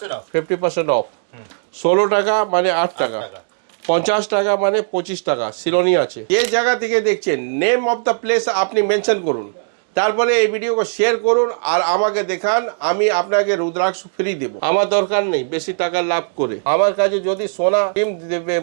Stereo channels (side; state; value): left; silent; digital silence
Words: 50% অফ। 16 টাকা মানে 8 টাকা, 50 টাকা মানে 25 টাকা। সিলোনি আছে। যে জায়গা থেকে দেখছেন নেম অফ দ্য প্লেস আপনি মেনশন করুন, তারপরে এই ভিডিওকে শেয়ার করুন আর আমাকে দেখান, আমি আপনাকে রুদ্রাক্ষ ফ্রি দেব। আমার দরকার নেই বেশি টাকা লাভ করে। আমার কাছে যদি সোনা ডিম দেবে